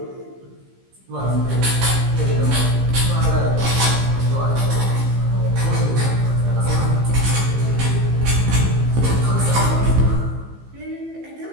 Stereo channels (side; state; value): left; late; 15 ms